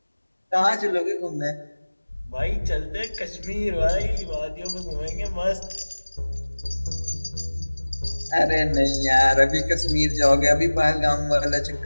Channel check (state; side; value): inverted; both; correlation -1.00